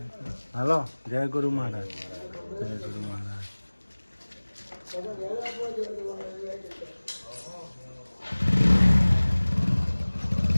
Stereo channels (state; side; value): inverted; both; correlation -1.00